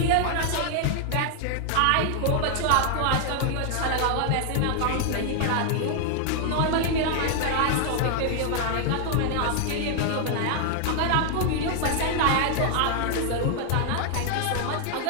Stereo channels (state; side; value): different; both; correlation 0.00